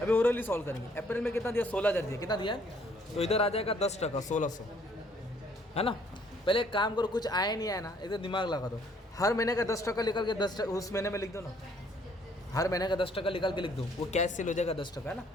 अभी ओरली सॉल्व करेंगे। अप्रैल में कितना दिया, 16000 दिया, कितना दिया, तो इधर आ जाएगा 10%, 1600, है ना। पहले एक काम करो, कुछ आया नहीं आया ना, इधर दिमाग लगा दो, हर महीने का 10% निकाल के 10% उस महीने में लिख दो ना, हर महीने का 10% निकाल के लिख दो, वो कैश सेल हो जाएगा 10%, है ना।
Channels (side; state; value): both; normal; correlation 0.63